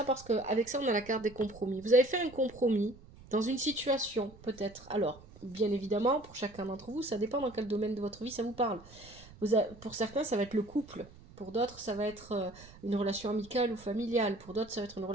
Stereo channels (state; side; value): noise; right; rumble, 21 dB below the sound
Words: Parce qu'avec ça, on a la carte des compromis. Vous avez fait un compromis dans une situation, peut-être. Alors, bien évidemment, pour chacun d'entre vous, ça dépend dans quel domaine de votre vie ça vous parle. Pour certains, ça va être le couple. Pour d'autres, ça va être une relation amicale ou familiale. Pour d'autres, ça va être une